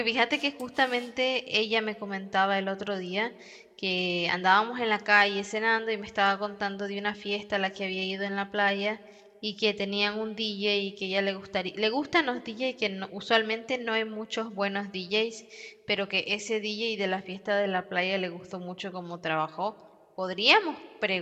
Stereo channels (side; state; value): both; identical; correlation 1.00